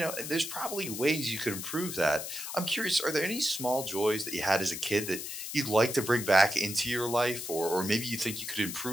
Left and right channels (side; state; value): left; noise; hiss, 7 dB below the sound